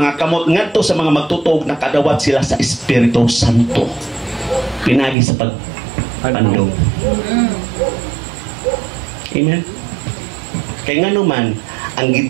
kamot ngadto sa mga magtutuog nakadawat sila sa Espiritu Santo. Pinagi sa pagpandong. Amen. Kay ngano man ang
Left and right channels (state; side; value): drops out; left; at 5.2 s